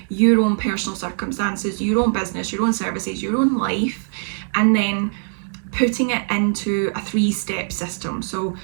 your own personal circumstances, your own business, your own services, your own life, and then putting it into a 3-step system. So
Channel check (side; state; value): left; silent; 64 dB below the other